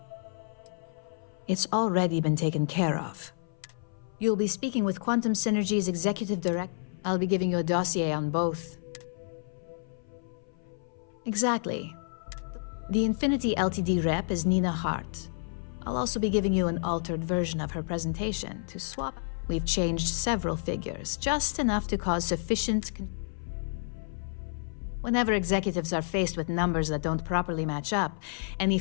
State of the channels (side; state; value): right; silent; 56 dB below the other